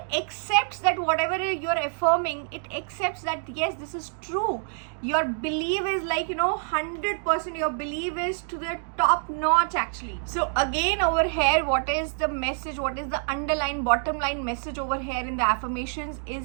accepts that whatever you're affirming, it accepts that yes, this is true. Your belief is 100%, your belief is to the top notch actually. So again over here, what is the message, what is the underlying bottom line message over here in the affirmations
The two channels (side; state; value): left; silent; 55 dB below the other